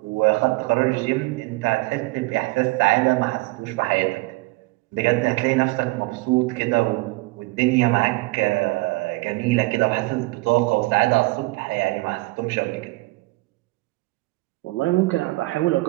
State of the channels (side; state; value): left; quieter; 23.3 dB